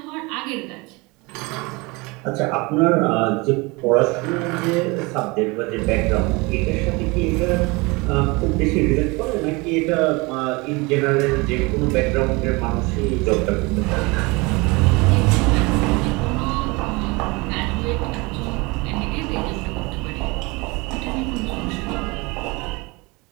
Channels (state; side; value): quieter; left; 25.7 dB